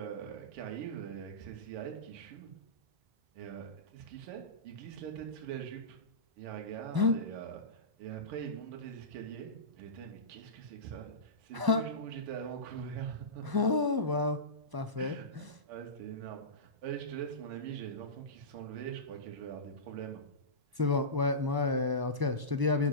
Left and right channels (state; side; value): late; left; 1.0 ms